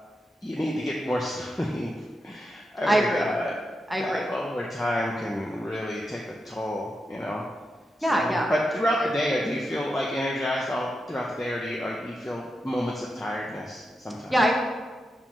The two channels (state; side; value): normal; both; correlation 0.87